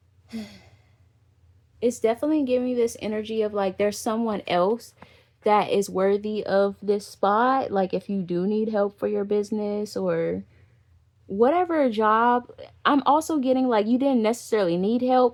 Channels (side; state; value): both; identical; correlation 1.00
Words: It's definitely giving me this energy of like there's someone else that is worthy of this spot. Like if you do need help for your business or whatever job, I'm also getting like you didn't necessarily need